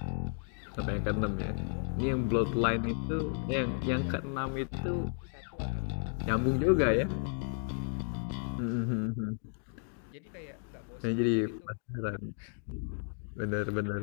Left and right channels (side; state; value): right; silent; 55 dB below the other